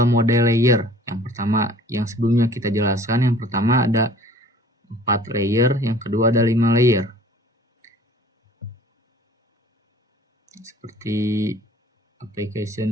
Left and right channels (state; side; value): normal; both; correlation 0.50